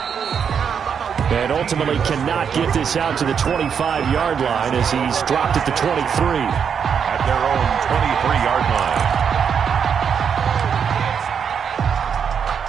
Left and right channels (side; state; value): left; quieter; 7.2 dB